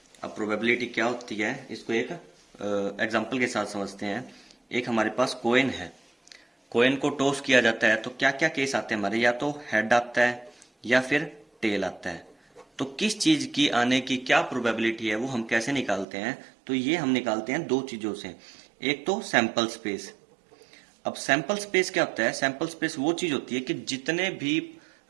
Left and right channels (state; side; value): drops out; left; at 16.1 s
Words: अब प्रोबेबिलिटी क्या होती है इसको एक एग्जांपल के साथ समझते हैं। एक हमारे पास कॉइन है, कॉइन को टॉस किया जाता है तो क्या क्या केस आते हैं हमारे, या तो हेड आता है या फिर टेल आता है। तो किस चीज की आने की क्या प्रोबेबिलिटी है वो हम कैसे निकालते हैं, तो ये हम निकालते हैं दो चीजों से। एक तो सैंपल स्पेस। अब सैंपल स्पेस क्या होता है? सैंपल स्पेस वो चीज होती है कि जितने भी